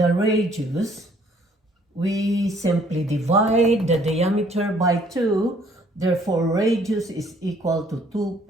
radius, we simply divide the diameter by 2. Therefore, radius is equal to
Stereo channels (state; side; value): normal; both; correlation 0.61